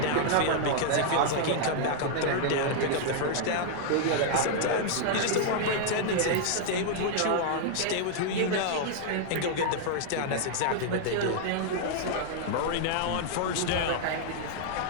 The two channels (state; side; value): different; both; correlation -0.01